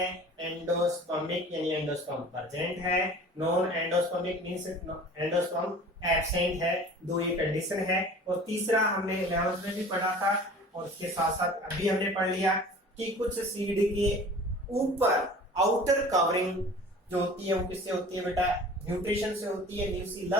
एंडोस्पर्मिक यानी एंडोस्पर्म प्रेजेंट है, non endospermic means endosperm absent है, दो ये कंडीशन है। और तीसरा हमने 11th में भी पढ़ा था और उसके साथ साथ अभी हमने पढ़ लिया कि कुछ सीड के ऊपर आउटर कवरिंग जो होती है वो किससे होती है बेटा, न्यूट्रिशन से होती है,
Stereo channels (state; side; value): normal; both; correlation 0.43